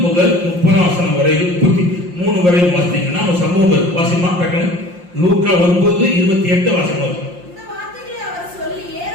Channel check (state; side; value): late; left; 5.7 ms